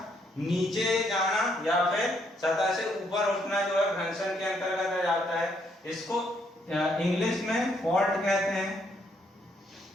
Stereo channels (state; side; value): normal; both; correlation 0.72